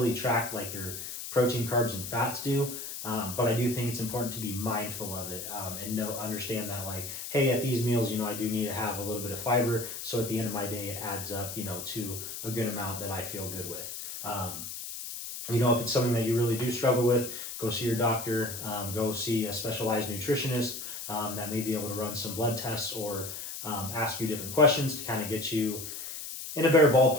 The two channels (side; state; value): left; noise; hiss, 8 dB below the sound